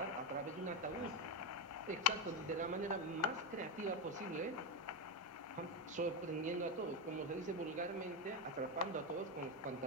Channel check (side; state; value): both; normal; correlation 0.11